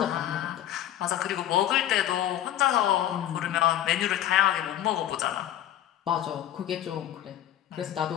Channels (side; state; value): right; quieter; 12.0 dB